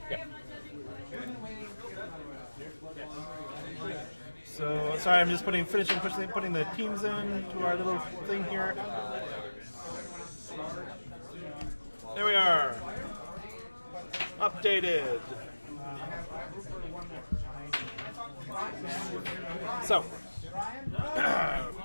Yeah. So, sorry, I'm just putting the teams in to our little thing here. There we are. Updated. So,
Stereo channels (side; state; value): both; inverted; correlation -1.00